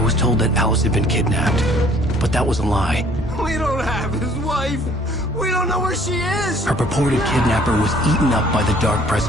was told that Alice had been kidnapped, but that was a lie. We don't have his wife! We don't know where she is! Her purported kidnapper was eaten up by the dark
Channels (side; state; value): both; normal; correlation 0.57